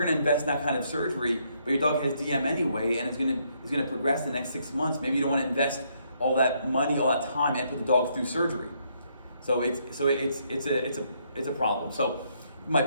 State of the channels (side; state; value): both; inverted; correlation -0.72